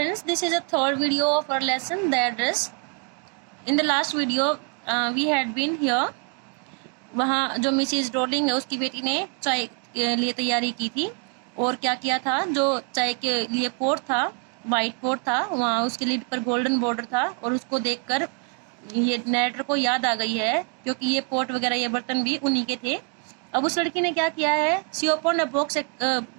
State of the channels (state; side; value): quieter; left; 38.1 dB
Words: this is a third video of our lesson, the address. In the last video, we had been here. वहाँ जो मिसिज रोलिंग है उसकी बेटी ने चाय के लिए तैयारी की थी और क्या किया था, जो चाय के लिए पोट था, वाइट पोट था, वहाँ उसके लिड पर गोल्डन बॉर्डर था और उसको देखकर ये नरेटर को याद आ गई है क्योंकि ये पोट वगैरह ये बर्तन भी उन्हीं के थे। अब उस लड़की ने क्या किया है, सी ओपन अ